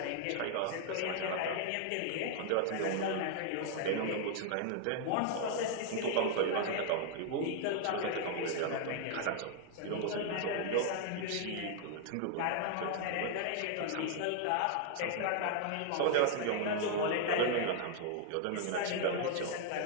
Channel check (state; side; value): different; both; correlation 0.00